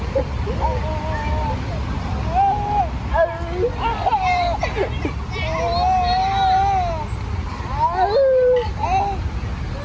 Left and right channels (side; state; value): both; identical; correlation 1.00